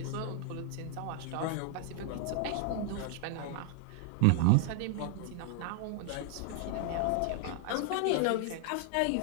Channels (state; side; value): different; both; correlation 0.00